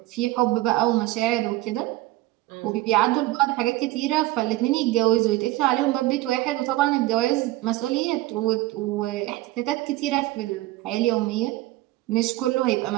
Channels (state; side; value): quieter; left; 17.7 dB